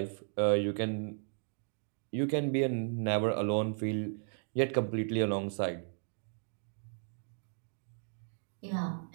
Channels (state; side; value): silent; left; digital silence